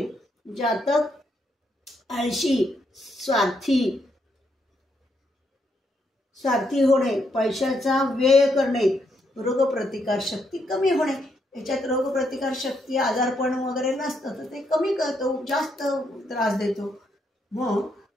जातक आळशी, स्वार्थी होणे, पैशाचा व्यय करणे, रोगप्रतिकार शक्ती कमी होणे. याच्यात रोगप्रतिकार शक्ती, आजारपण वगैरे नसतं तर ते कमी करतो, जास्त त्रास देतो. मग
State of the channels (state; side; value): normal; both; correlation 0.77